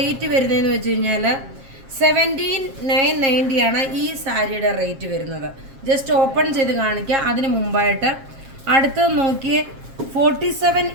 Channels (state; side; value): late; left; 7.4 ms